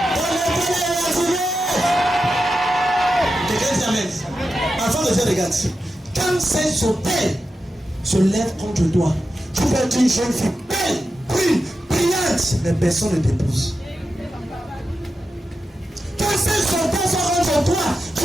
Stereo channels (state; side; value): normal; both; correlation 0.90